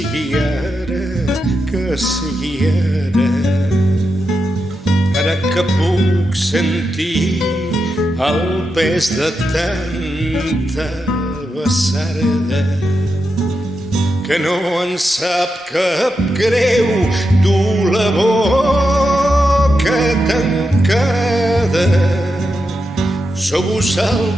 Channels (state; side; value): normal; both; correlation 0.87